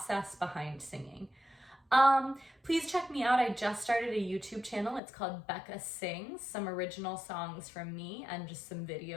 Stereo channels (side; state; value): right; drops out; at 5.0 s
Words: behind singing. Please check me out. I just started a YouTube channel. It's called Becka Sings, some original songs from me and just some